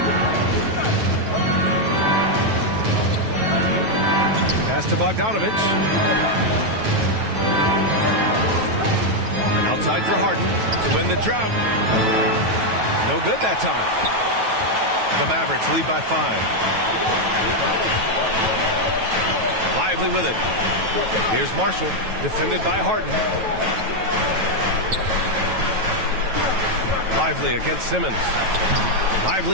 Pass to Bogdanovich. And outside for Harden to win the drought. No good that time. The Mavericks lead by 5. Lively with it. Here's Marshall, defended by Harden. Lively against Simmons.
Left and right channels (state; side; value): late; left; 9.2 ms